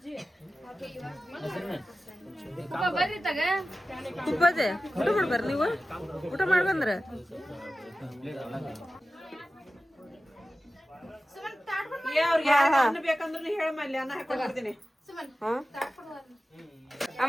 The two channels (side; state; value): both; normal; correlation 0.94